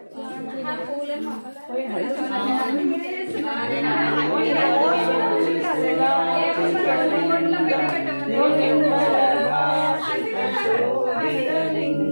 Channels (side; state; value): both; inverted; correlation -1.00